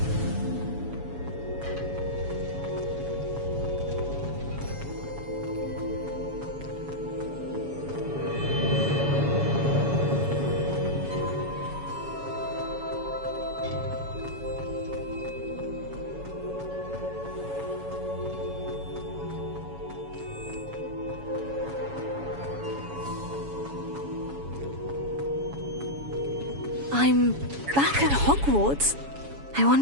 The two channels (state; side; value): late; left; 7.1 ms